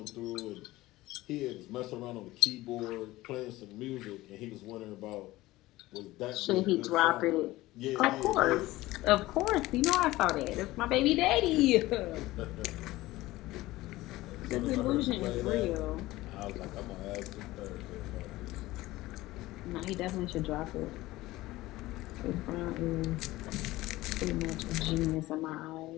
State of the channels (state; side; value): quieter; right; 18.0 dB